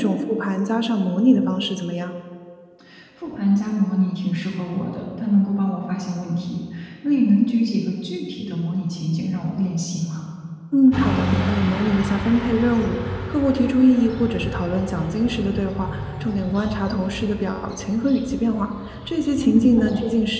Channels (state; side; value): identical; both; correlation 1.00